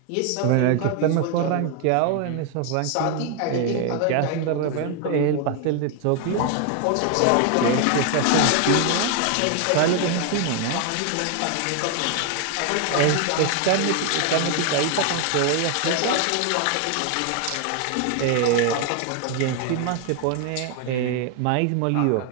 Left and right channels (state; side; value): different; both; correlation 0.00